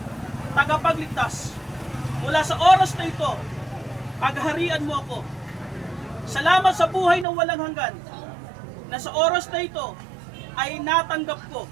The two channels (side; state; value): left; drops out; at 7.2 s